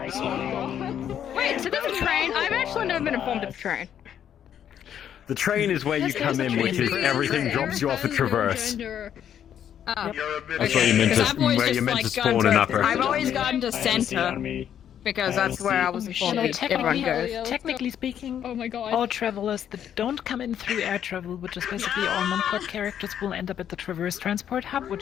Wait, so there's a train? I've actually never been informed of the train. The train is where you come in, which is everything drops you off at Traverse. Oh. That's where you're meant to spawn in upper. I've always gotten to center. Because that's where I was informed that everyone goes. Technically speaking, oh my god, all travelers that don't come in through air travel, which is basically all non-port characters, will end up at the Traverse Transport Hub,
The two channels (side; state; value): right; quieter; 9.5 dB